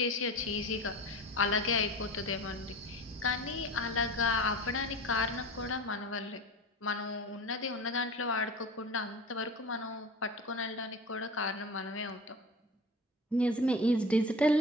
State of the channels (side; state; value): both; normal; correlation 0.33